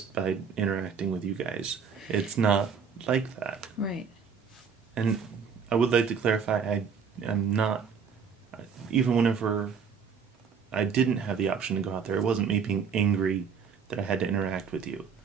by interacting with you guys. It's not like that. Right. And I would like to clarify, I'm not, even whenever I didn't have the option to go out there, it wasn't me being angry that I had to interact with you.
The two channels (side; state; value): left; quieter; 6.3 dB